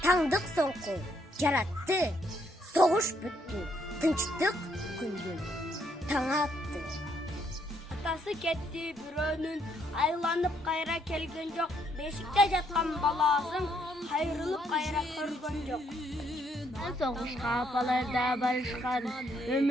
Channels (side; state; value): both; normal; correlation 0.72